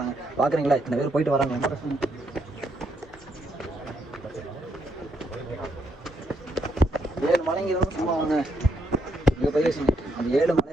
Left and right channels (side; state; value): both; normal; correlation 0.75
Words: தாங்க. பார்க்குறீங்களா இத்தனை பேர் போயிட்டு வராங்க. ரொம்ப கஷ்டம். 7 மலைங்க இருந்தாலும் சும்மா வாங்க. இங்கே போய் அந்த 7